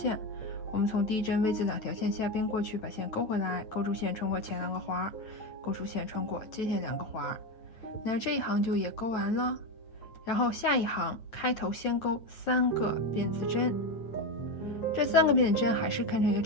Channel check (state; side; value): late; right; 9.2 ms